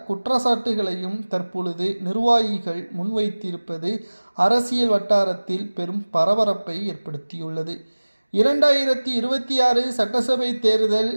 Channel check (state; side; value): inverted; both; correlation -1.00